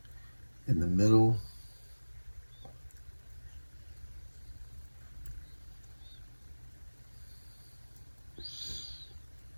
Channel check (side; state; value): both; inverted; correlation -1.00